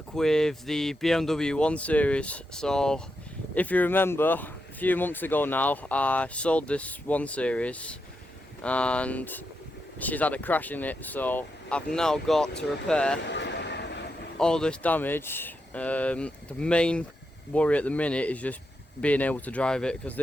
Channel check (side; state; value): both; normal; correlation 0.85